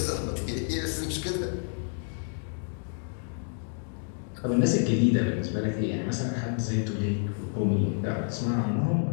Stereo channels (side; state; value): right; silent; 58 dB below the other